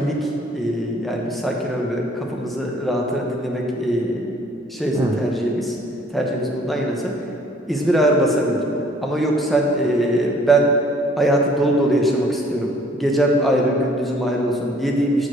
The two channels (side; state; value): both; normal; correlation 0.58